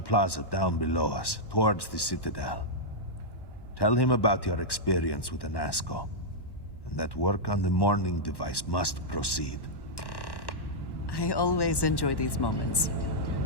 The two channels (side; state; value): right; late; 1.1 ms